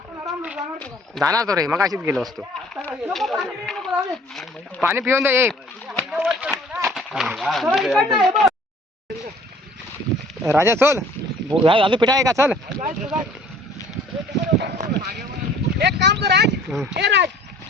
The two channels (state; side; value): normal; both; correlation 0.53